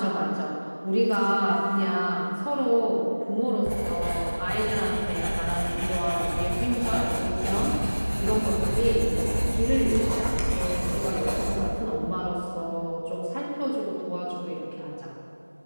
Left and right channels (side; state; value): both; inverted; correlation -1.00